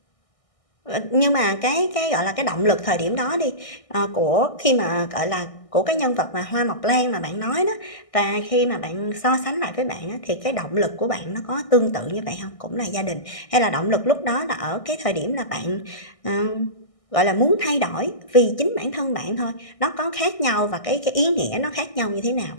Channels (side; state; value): right; late; 1.6 ms